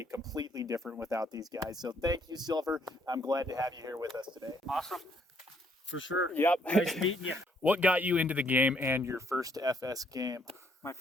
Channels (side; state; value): both; normal; correlation 0.68